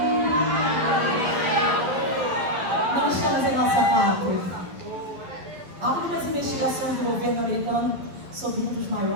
Não estamos em nossa pátria. Há algumas investigações do governo americano sobre um dos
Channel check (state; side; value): late; left; 11 ms